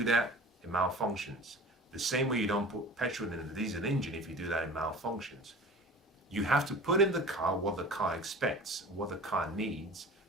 that, it malfunctions. The same way you don't put petrol in a diesel engine. If you do that, it malfunctions. You have to put in the car what the car expects, what the car needs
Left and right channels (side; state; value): both; normal; correlation 0.40